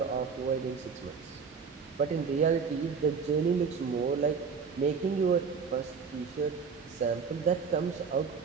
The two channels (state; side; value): quieter; left; 5.7 dB